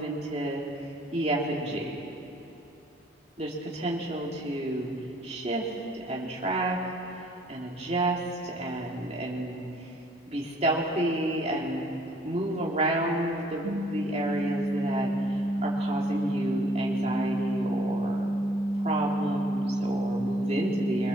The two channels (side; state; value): both; normal; correlation 0.61